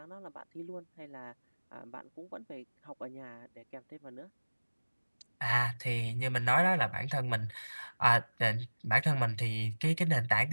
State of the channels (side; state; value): both; inverted; correlation -1.00